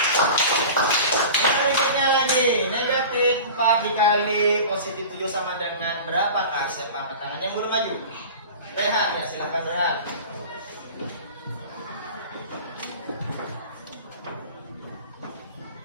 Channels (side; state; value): both; inverted; correlation -0.37